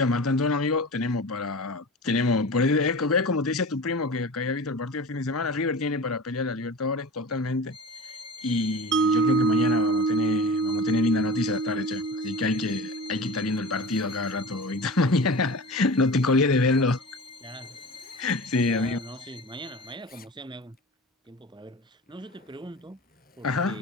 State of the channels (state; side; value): normal; both; correlation 0.34